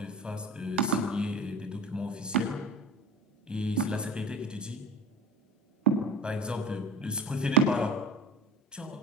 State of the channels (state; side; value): normal; both; correlation 0.35